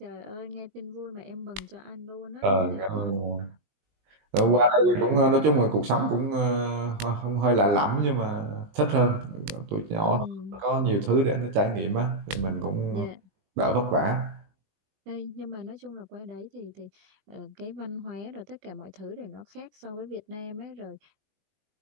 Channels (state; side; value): late; left; 20 ms